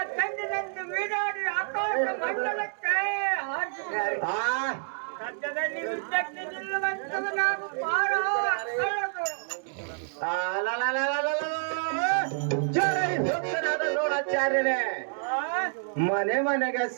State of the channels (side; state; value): left; silent; digital silence